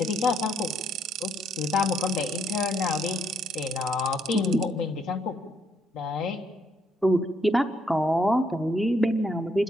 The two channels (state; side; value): normal; both; correlation 0.71